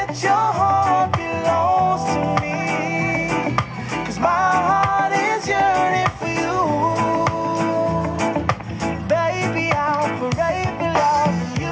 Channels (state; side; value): identical; both; correlation 1.00